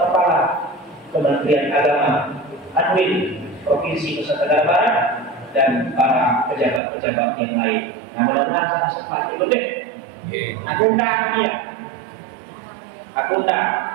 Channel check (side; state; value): left; drops out; at 6.8 s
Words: Kementerian Agama Anwil Provinsi Nusa Tenggara Barat, dan para pejabat-pejabat yang lain. Nah, mudah-mudahan sempat itu deh. Aku undang dia. Aku undang.